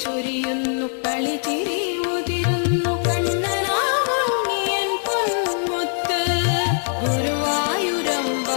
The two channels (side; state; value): right; silent; 60 dB below the other